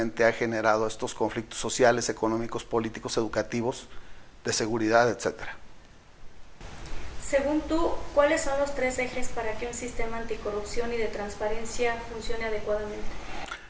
ha generado estos conflictos sociales, económicos, políticos, educativos, de seguridad, etcétera. Según tú, ¿cuáles son los 3 ejes para que un sistema anticorrupción y de transparencia funcione adecuadamente?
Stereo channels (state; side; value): identical; both; correlation 1.00